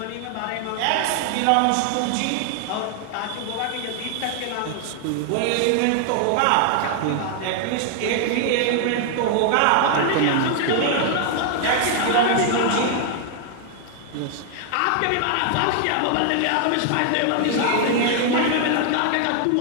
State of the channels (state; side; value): different; both; correlation 0.00